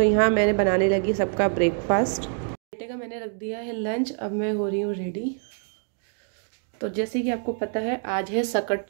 यहाँ मैंने बनाने लगी सबका ब्रेकफास्ट। बेटे का मैंने रख दिया है लंच, अब मैं हो रही हूँ रेडी। तो जैसे कि आपको पता है आज है सकट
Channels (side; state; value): left; silent; 61 dB below the other